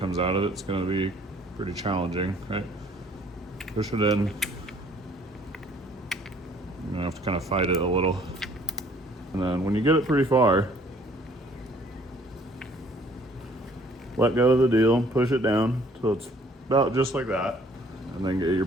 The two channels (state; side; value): normal; both; correlation 0.59